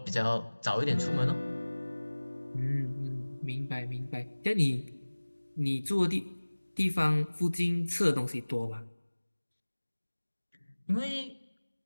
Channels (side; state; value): both; inverted; correlation -1.00